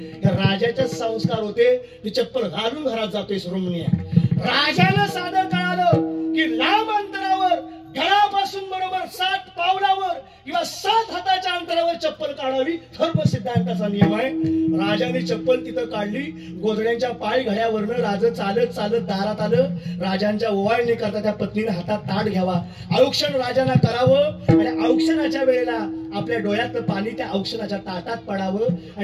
राजाचे संस्कार होते. ती चप्पल घालून घरात जातोय सुरमणी. राजाला साधं कळालं की लांब अंतरावर घरापासून बरोबर 7 पावलावर किंवा 7 हाताच्या अंतरावर चप्पल काढावी, धर्म सिद्धांताचा नियम आहे. राजाने चप्पल तिथं काढली. गोधड्यांच्या पाय घड्यावरनं राजा चालत दारात आलं. राजांच्या ओवाळणी करता त्या पत्नीने हातात ताट घ्यावा, औक्षण राजांना करावं आणि औक्षणाच्या वेळेला आपल्या डोळ्यातलं पाणी त्या औक्षणाच्या ताटात पडावं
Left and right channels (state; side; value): identical; both; correlation 1.00